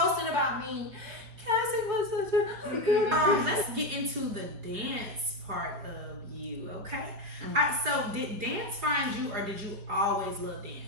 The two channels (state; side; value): late; left; 5.0 ms